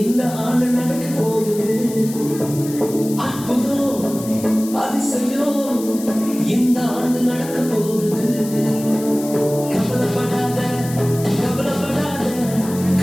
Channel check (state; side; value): noise; left; hiss, 14 dB below the sound